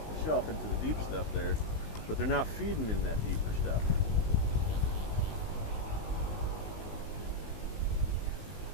the shelf into the deep stuff there. But they're not feeding in that deeper stuff.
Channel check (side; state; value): right; late; 19 ms